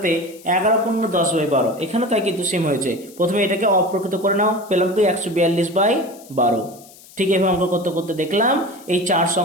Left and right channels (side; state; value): left; noise; hiss, 22 dB below the sound